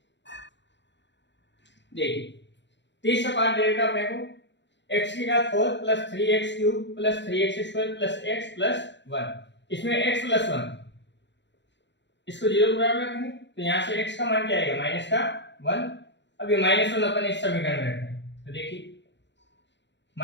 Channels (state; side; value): late; right; 0.52 ms